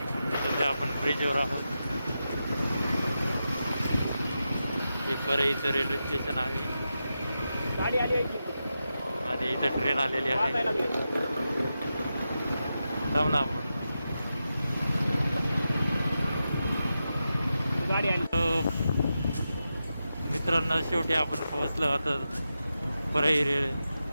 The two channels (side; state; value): both; inverted; correlation -0.89